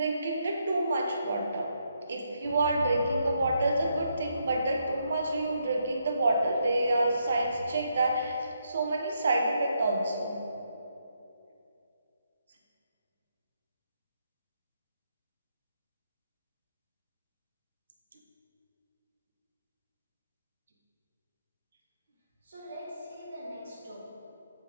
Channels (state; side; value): inverted; both; correlation -0.77